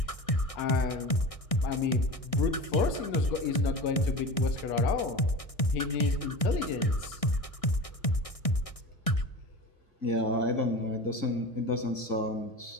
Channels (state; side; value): late; right; 1.6 ms